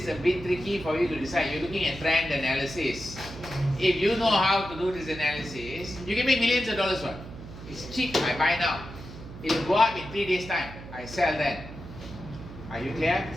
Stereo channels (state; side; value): noise; right; hum, 14 dB below the sound